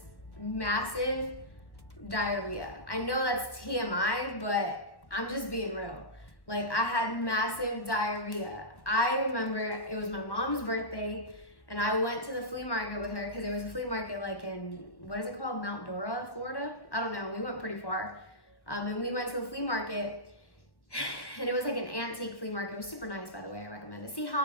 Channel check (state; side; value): late; right; 1.1 ms